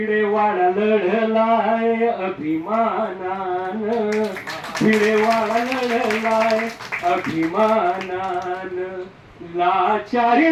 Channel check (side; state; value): both; identical; correlation 1.00